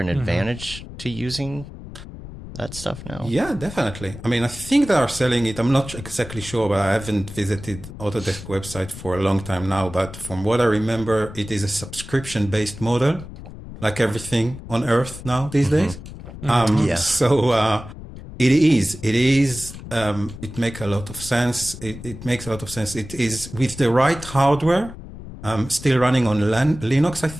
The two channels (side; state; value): left; noise; rumble, 13 dB below the sound